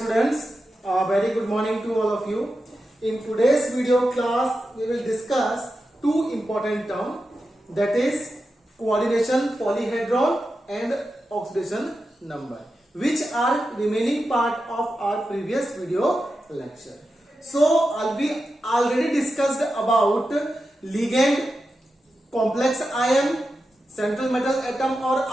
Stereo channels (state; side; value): normal; both; correlation 0.90